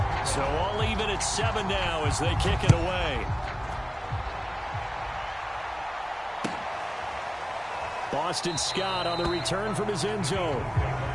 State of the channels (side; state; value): both; identical; correlation 1.00